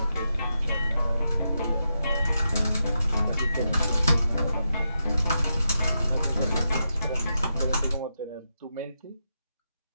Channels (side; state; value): both; inverted; correlation -0.85